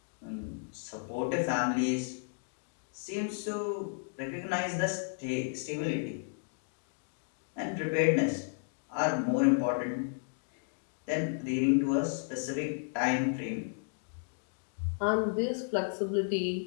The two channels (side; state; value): right; silent; digital silence